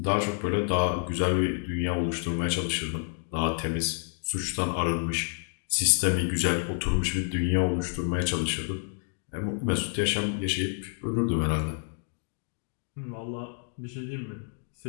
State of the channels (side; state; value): right; silent; 56 dB below the other